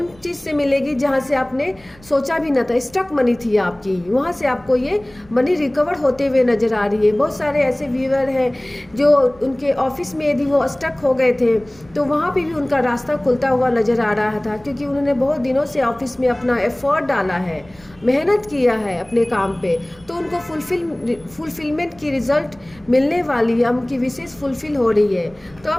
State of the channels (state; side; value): noise; right; rumble, 26 dB below the sound